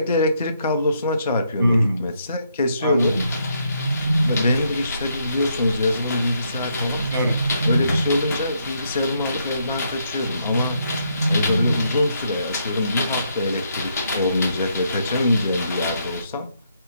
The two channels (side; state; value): both; inverted; correlation -0.75